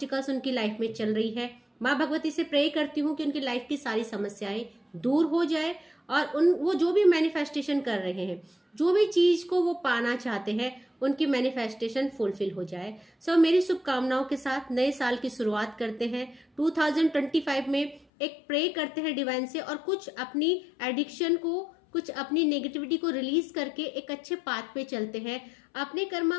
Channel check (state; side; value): drops out; right; at 18.1 s